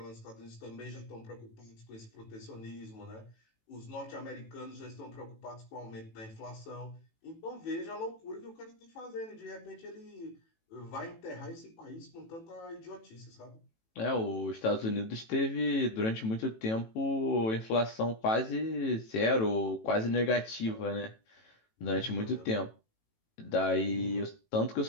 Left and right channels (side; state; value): right; late; 18 ms